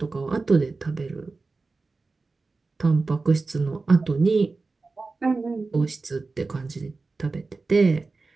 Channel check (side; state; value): left; quieter; 3.8 dB